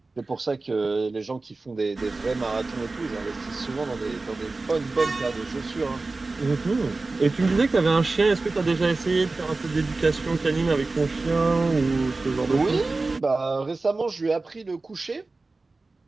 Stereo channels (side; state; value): left; quieter; 3.5 dB